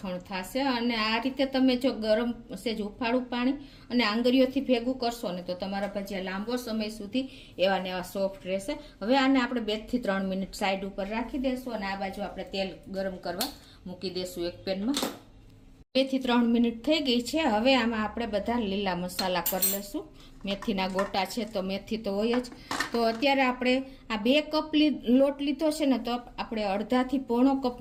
થશે અને આ રીતે તમે જો ગરમ સેજ હુંફાળું પાણી અને આંગળીઓથી ભેગું કરશો ને તો તમારા ભજીયા લાંબો સમય સુધી એવા ને એવા સોફ્ટ રહેશે। હવે આને આપણે 2 થી 3 મિનિટ સાઈડ ઉપર રાખી દેશું અને આ બાજુ આપણે તેલ ગરમ કરવા મૂકી દેશું એક પેનમાં। 2 થી 3 મિનિટ થઈ ગઈ છે। હવે આમાં આપણે બધા લીલા મસાલા કરી લેશું। મેથીના ગોટા છે તો મેથી તો હોય જ, તો અત્યારે આપણે આ 2 કપ લોટ લીધો છે ને તો આપણે અડધાથી પોણો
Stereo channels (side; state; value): both; identical; correlation 1.00